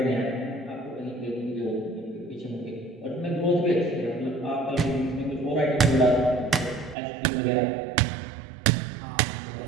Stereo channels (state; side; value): drops out; left; at 7.0 s